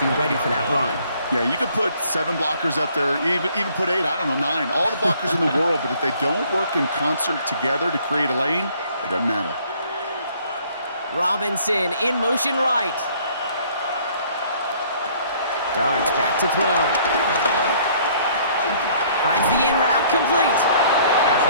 ready for that run. Yeah, you could put 7 blockers up there, even put 8, I don't know, 9. All the blockers in the world, but if they don't work in concert together to create a lane, it doesn't matter. Robinson in motion right. Darts back to throw. Finds the in route complete.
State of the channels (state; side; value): inverted; both; correlation -0.59